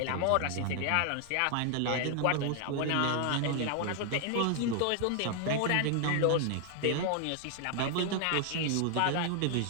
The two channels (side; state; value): both; different; correlation 0.00